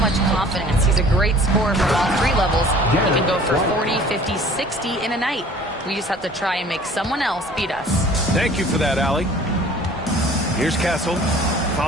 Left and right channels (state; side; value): normal; both; correlation 0.49